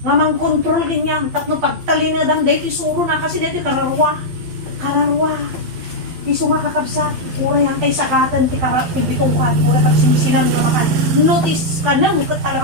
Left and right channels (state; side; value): late; left; 12 ms